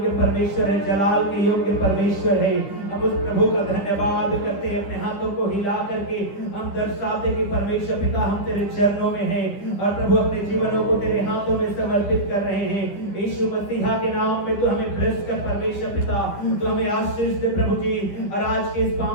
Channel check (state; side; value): late; right; 10 ms